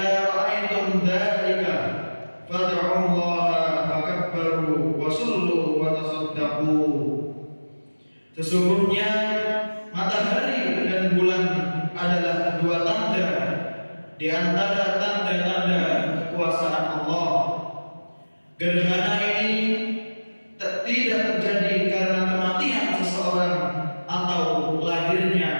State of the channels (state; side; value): inverted; both; correlation -1.00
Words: ra'aytum dzalika fad'u Allah fakabbaru wa sallu wa tasaddaqu." Sesungguhnya matahari dan bulan adalah dua tanda di antara tanda-tanda kekuasaan Allah. Gerhana ini tidak terjadi karena kematian seseorang atau lahirnya